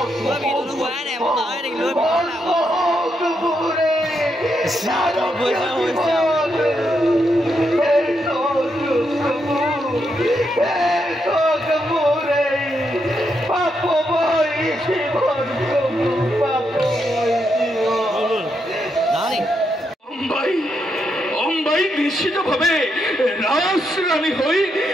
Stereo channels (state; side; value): normal; both; correlation 0.81